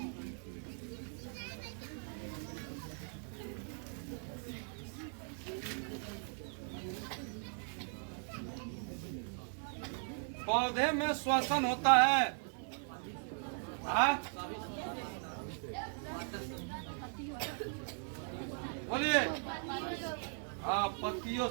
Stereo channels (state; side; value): silent; left; 52 dB below the other